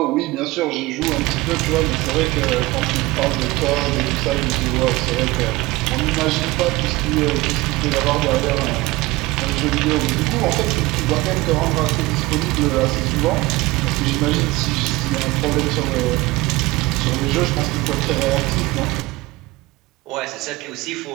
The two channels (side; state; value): left; quieter; 20.6 dB